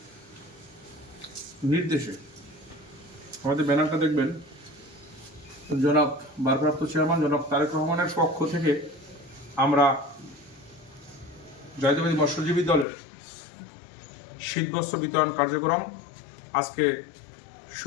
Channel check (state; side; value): drops out; right; at 12.9 s